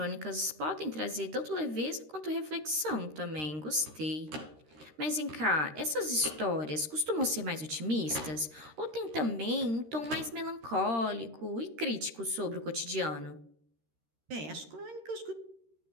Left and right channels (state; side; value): late; left; 13 ms